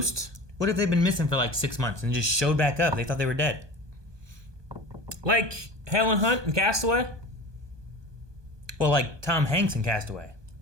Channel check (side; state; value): left; late; 1.2 ms